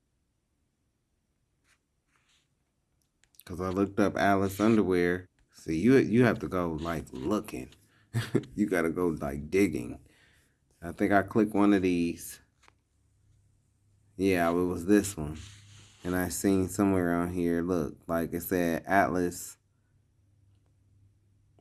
Because I looked up Alice underwear. See, you have to go, like, looking. You got to go, like, digging. I think I clicked one of these. Yeah, it was this one. And I seen somewhere on here, look, like it said Atlas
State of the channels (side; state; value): both; identical; correlation 1.00